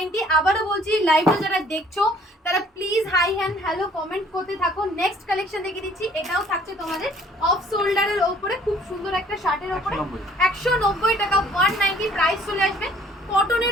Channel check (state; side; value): normal; both; correlation 0.56